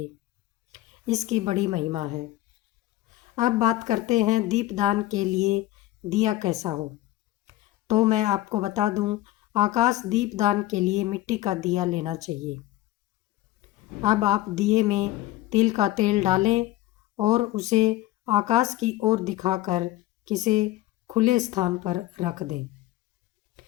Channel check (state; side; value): quieter; right; 15.9 dB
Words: इसकी बड़ी महिमा है। अब बात करते हैं दीपदान के लिए दिया कैसा हो। तो मैं आपको बता दूं, आकाश दीपदान के लिए मिट्टी का दिया लेना चाहिए। अब आप दिए में तिल का तेल डालें और उसे आकाश की ओर दिखाकर किसी खुले स्थान पर रख दें।